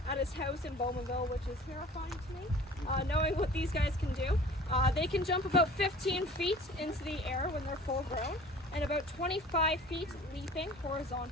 at his house in Bowmanville, which is terrifying to me, knowing what these guys can do. They can jump about 15 feet into the air when they're full grown, and about 25 feet leaping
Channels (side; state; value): both; normal; correlation 0.46